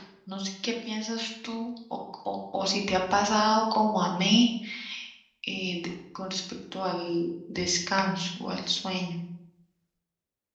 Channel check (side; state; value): both; identical; correlation 1.00